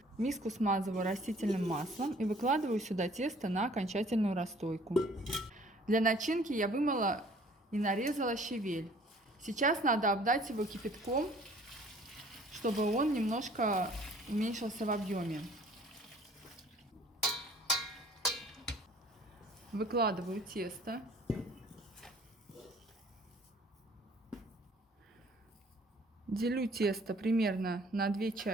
Миску смазываю растительным маслом и выкладываю сюда тесто на окончательную расстойку. Для начинки я вымыла и нарезала щавель. Сейчас надо обдать его кипятком, чтобы он немножко уменьшился в объеме. Выкладываю тесто. Делю тесто примерно на 2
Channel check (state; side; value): normal; both; correlation 0.54